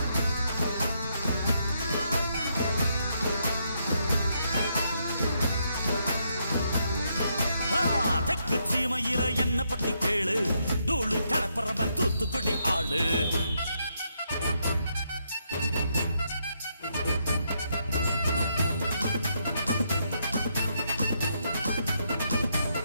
தெற்கு சீமையில என்ன பத்தி கேளு, தூளு கிளப்புறவன் தூத்துக்குடி ஆளு.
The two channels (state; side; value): inverted; both; correlation -0.77